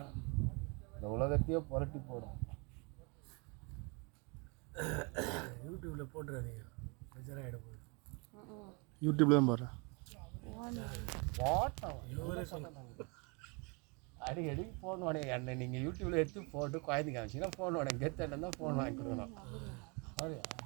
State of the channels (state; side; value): quieter; left; 31.5 dB